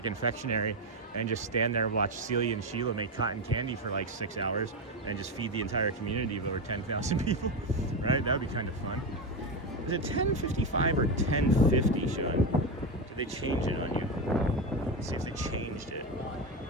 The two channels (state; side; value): normal; both; correlation 0.13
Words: and just stand there and watch Celia and Sheila make cotton candy for like 6 hours and just feed the entire community of over 10,000 people, right? That would be kind of fun. Is it 10:55 or 10:50, Sean? Did they change it on you? Let's see if they changed it.